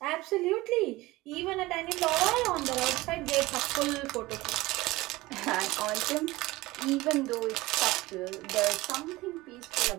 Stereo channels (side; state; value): left; quieter; 19.8 dB